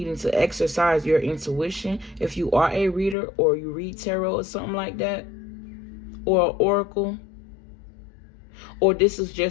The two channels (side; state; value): right; drops out; at 3.2 s